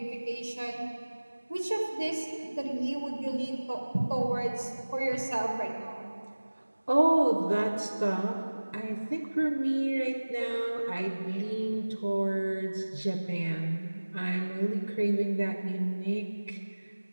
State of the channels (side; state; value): both; inverted; correlation -1.00